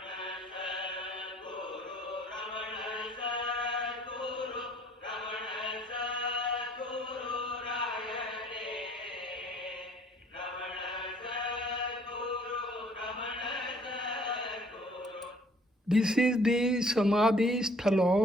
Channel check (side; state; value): both; normal; correlation 0.58